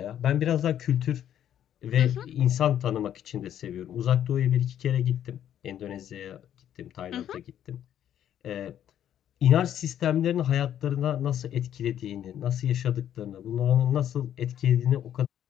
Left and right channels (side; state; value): right; quieter; 10.5 dB